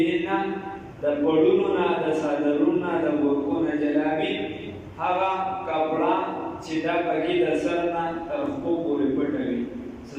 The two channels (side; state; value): both; identical; correlation 1.00